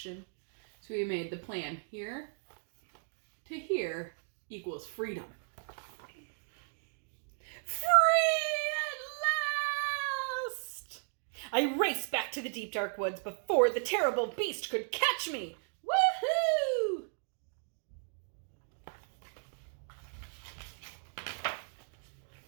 So we made the plan here to here equals freedom. Free at last! I raced back to the deep dark woods before the terrible beast could catch me. Woohoo!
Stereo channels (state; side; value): silent; left; 54 dB below the other